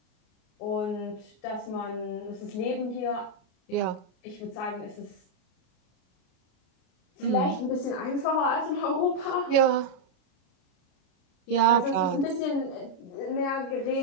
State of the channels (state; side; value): late; right; 31 ms